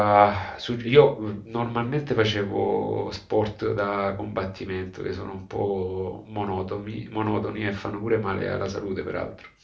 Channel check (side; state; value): both; identical; correlation 1.00